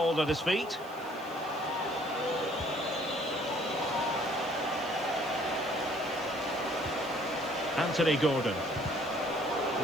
at his feet. Anthony Gordon.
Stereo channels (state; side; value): noise; right; hiss, 23 dB below the sound